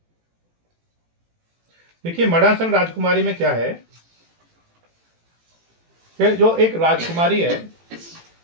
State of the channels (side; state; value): left; late; 18 ms